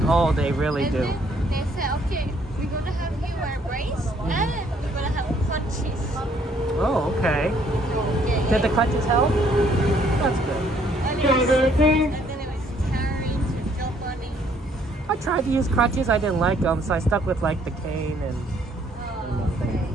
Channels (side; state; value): both; normal; correlation 0.65